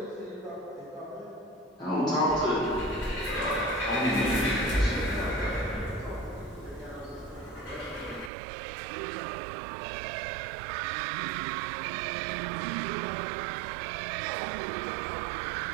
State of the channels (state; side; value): drops out; left; at 8.3 s